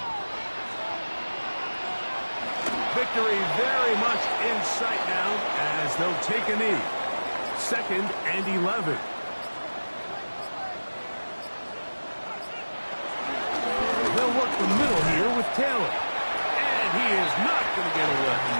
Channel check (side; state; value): both; inverted; correlation -1.00